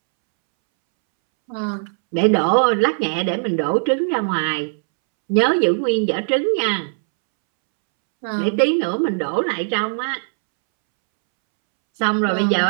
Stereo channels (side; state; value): left; silent; 66 dB below the other